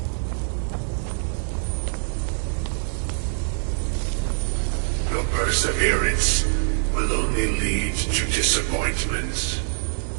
Your perseverance will only lead to disappointments.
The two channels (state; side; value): silent; left; digital silence